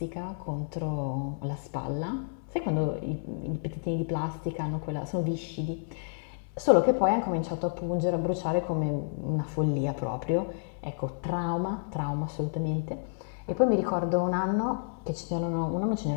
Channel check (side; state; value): right; silent; 58 dB below the other